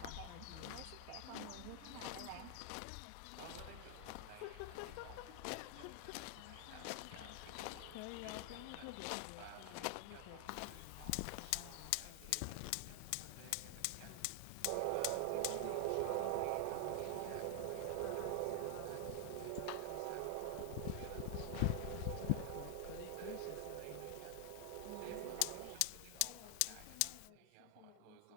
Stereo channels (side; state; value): both; different; correlation 0.00